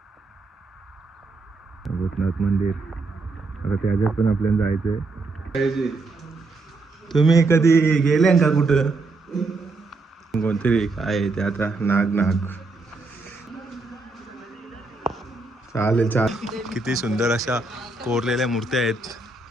भूतनाथ मंदिर आता त्याच्यात पण आपल्याला जायचंय. तुम्ही कधी गेले का कुठं? कोणतरी काय ते आता नाग चालेल चालेल. किती सुंदर अशा कोरलेल्या मूर्त्या आहेत.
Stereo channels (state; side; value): quieter; left; 3.5 dB